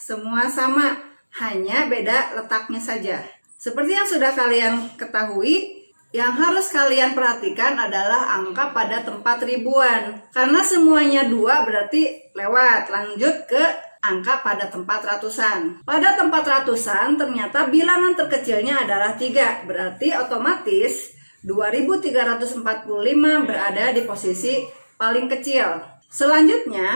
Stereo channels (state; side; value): inverted; both; correlation -1.00